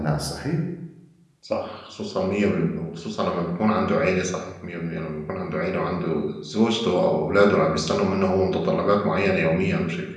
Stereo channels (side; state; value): both; identical; correlation 1.00